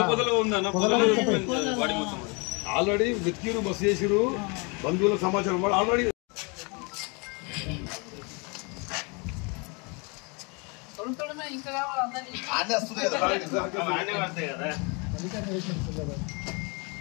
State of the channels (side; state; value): right; quieter; 31.5 dB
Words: ఆల్రెడీ వెతికిరు బస్సు చేసిరు బంధువుల సమాచారం వాడు ఆల్రెడీ